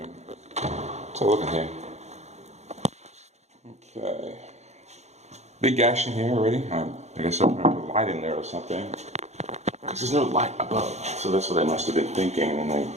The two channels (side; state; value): left; late; 0.32 ms